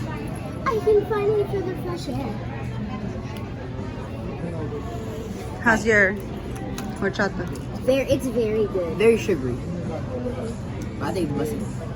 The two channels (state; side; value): identical; both; correlation 1.00